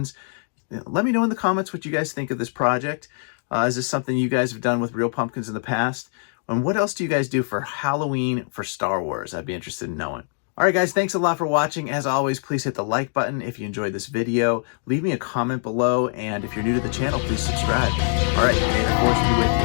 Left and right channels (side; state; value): right; silent; 56 dB below the other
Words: Let me know in the comments what you guys think of this project. Is this something you guys have done with real pumpkins in the past? And what else do you guys do for Halloween for Star Wars? I'd be interested in knowing. All right, guys, thanks a lot for watching. As always, please hit the like button if you enjoyed this video. Leave me a comment below, and if you're new to the channel, please subscribe. All right, may the Force be